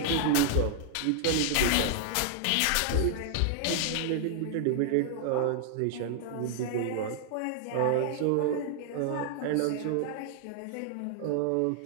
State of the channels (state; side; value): different; both; correlation 0.00